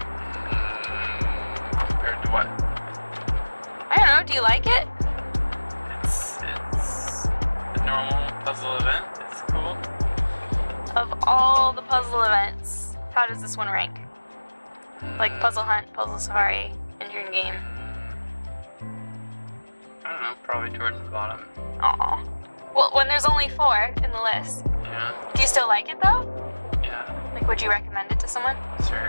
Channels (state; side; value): inverted; both; correlation -1.00